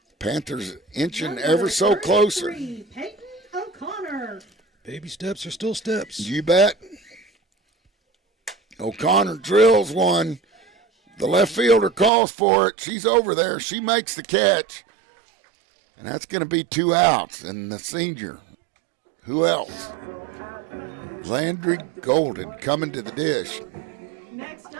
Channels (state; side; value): drops out; left; at 12.1 s